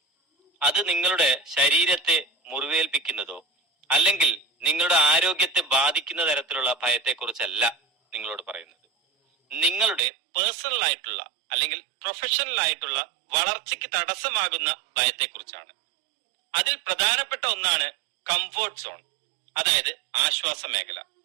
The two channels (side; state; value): left; drops out; at 10.0 s